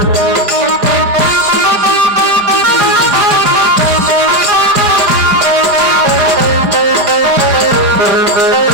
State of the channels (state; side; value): late; left; 5.0 ms